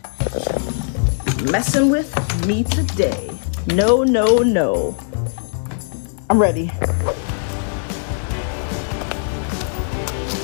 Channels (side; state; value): right; silent; digital silence